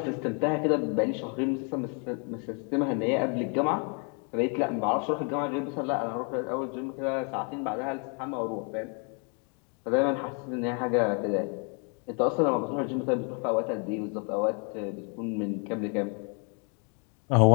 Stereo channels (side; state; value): right; quieter; 38.0 dB